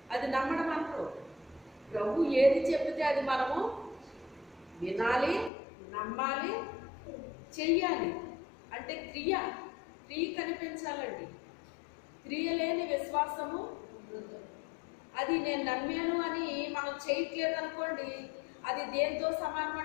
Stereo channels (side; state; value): right; drops out; at 5.5 s